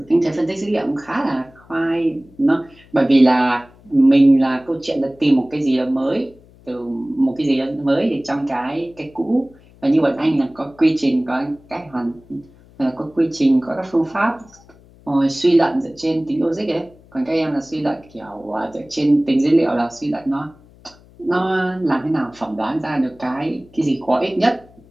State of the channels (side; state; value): left; noise; hum, 26 dB below the sound